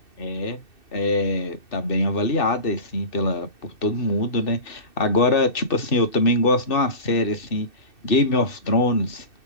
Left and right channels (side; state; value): right; late; 2.6 ms